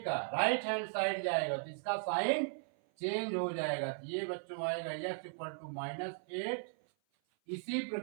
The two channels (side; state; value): left; silent; 53 dB below the other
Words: का राइट हैंड साइड जाएगा तो इसका साइन चेंज हो जाएगा, तो ये बच्चों आएगा x इक्वल टू -8। इसी